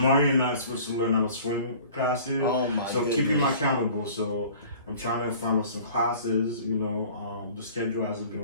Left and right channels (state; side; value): inverted; both; correlation -0.47